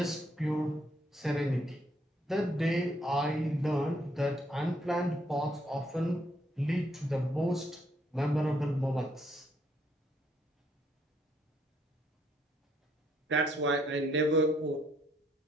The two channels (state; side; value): normal; both; correlation 0.71